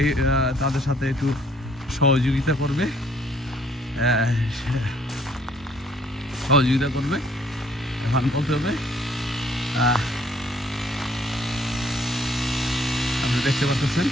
তাদের সাথে একটু সহযোগিতা করবে, এখন বলতে হবে। আপনি দেখতে পাচ্ছেন,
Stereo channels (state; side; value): normal; both; correlation 0.63